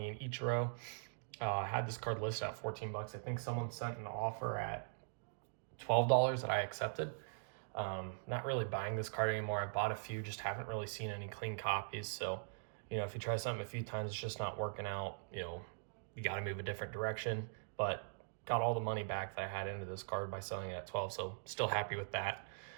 and Ichiro. Had this card listed at 14 bucks. I think someone sent an offer at $12 that I accepted. Not really buying this card anymore. I bought a few, just haven't really seen any clean copies. So, if you try something a few times, it's just not working out, you got to move a different direction. But got all the money back that I had into this card by selling it at 12, so still happy with that.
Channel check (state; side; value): silent; left; digital silence